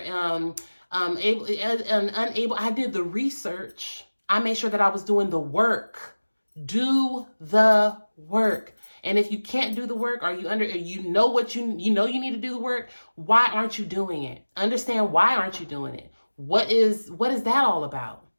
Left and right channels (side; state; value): both; inverted; correlation -1.00